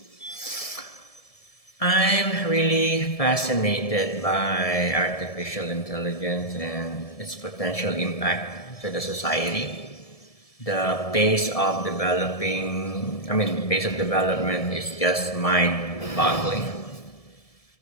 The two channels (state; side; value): late; right; 1.7 ms